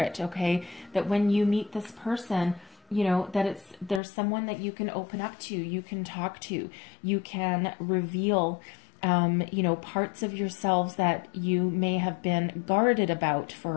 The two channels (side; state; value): right; drops out; at 4.0 s